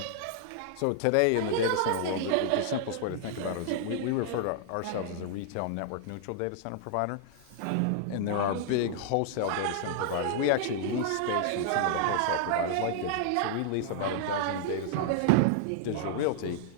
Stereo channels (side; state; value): both; different; correlation -0.01